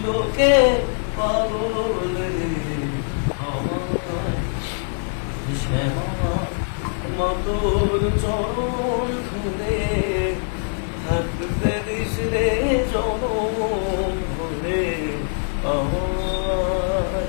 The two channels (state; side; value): silent; right; digital silence